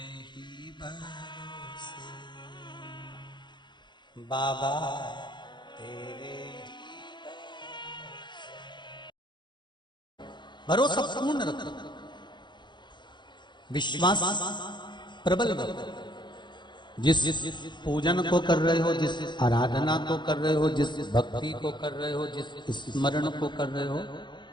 ही भरोसे बाबा, तेरे भरोसा पूर्ण रखो, विश्वास प्रबल रखो। जिस पूजन को कर रहे हो, जिस आराधना को कर रहे हो, जिस भक्ति को कर रहे हो, जिस स्मरण को कर रहे हो,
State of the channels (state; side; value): late; right; 0.22 ms